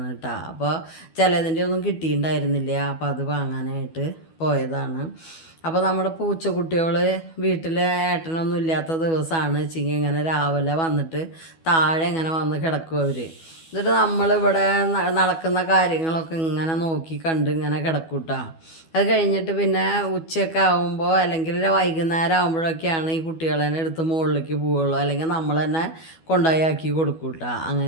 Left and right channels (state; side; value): late; right; 12 ms